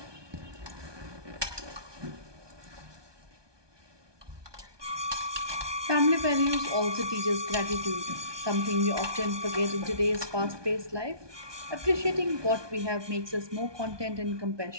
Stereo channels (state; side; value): late; left; 1.2 ms